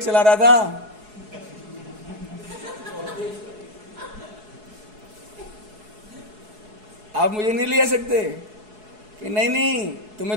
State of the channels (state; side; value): late; left; 4.7 ms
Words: चला रहा था, आप मुझे नहीं ले जा सकते कि नहीं नहीं